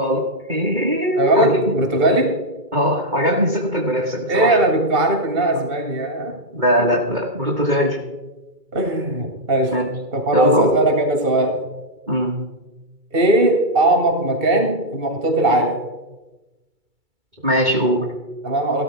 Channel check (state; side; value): late; left; 2.3 ms